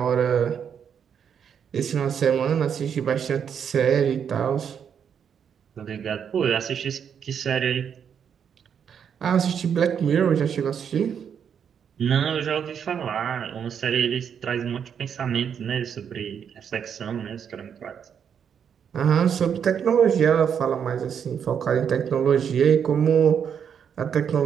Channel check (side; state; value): left; quieter; 7.8 dB